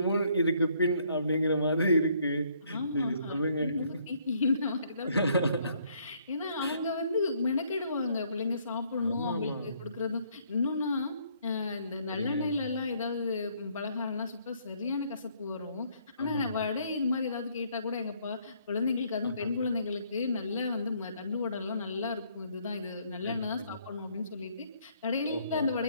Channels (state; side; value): inverted; both; correlation -0.67